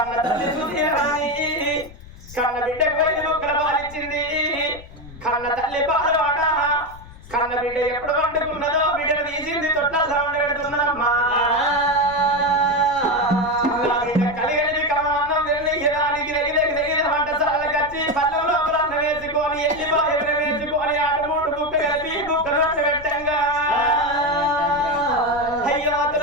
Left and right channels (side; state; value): left; noise; rumble, 18 dB below the sound